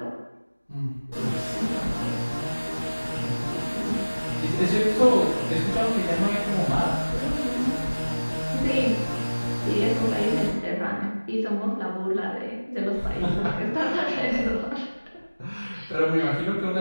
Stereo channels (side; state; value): both; inverted; correlation -1.00